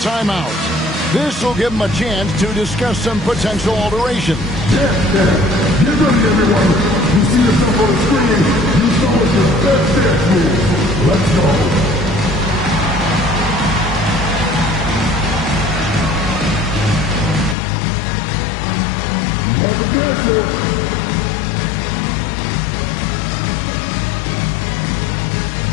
This will give him a chance to discuss some potential alteration. Get ready, everyone. You see yourself on the screen. You saw what your best dance move. Let's go.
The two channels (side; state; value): right; drops out; at 17.6 s